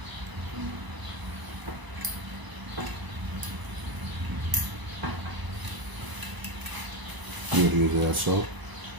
You would use that so.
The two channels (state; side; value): late; left; 1.0 ms